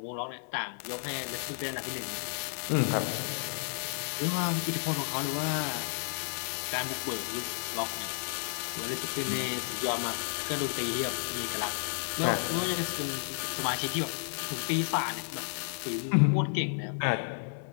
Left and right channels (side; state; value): right; silent; digital silence